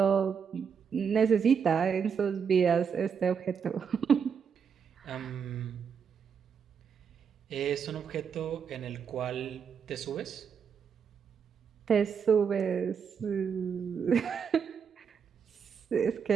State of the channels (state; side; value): quieter; left; 6.8 dB